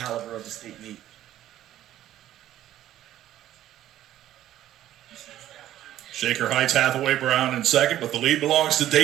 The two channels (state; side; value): quieter; left; 12.8 dB